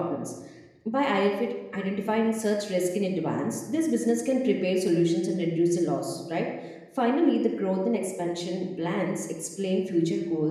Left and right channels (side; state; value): both; identical; correlation 1.00